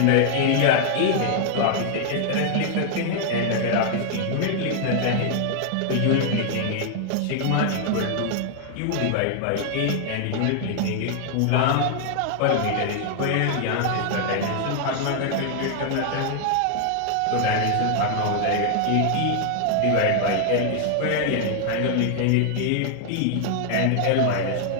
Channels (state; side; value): different; both; correlation 0.00